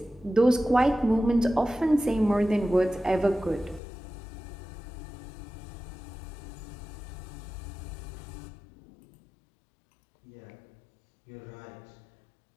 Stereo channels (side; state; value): right; drops out; at 3.8 s